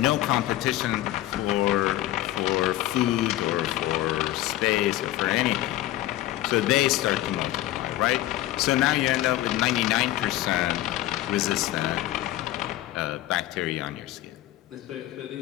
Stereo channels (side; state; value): right; quieter; 15.2 dB